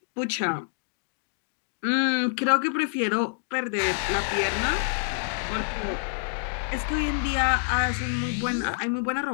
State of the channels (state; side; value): silent; right; digital silence